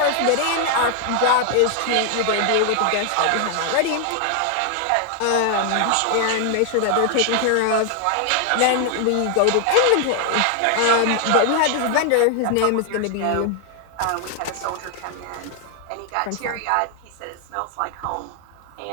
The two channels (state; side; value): different; both; correlation 0.00